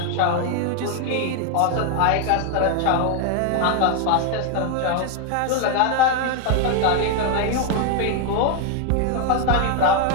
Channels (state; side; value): different; both; correlation 0.01